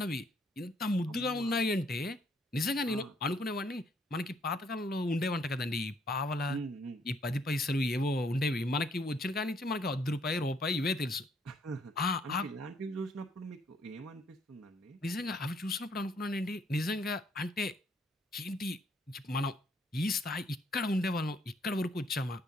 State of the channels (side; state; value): both; normal; correlation 0.68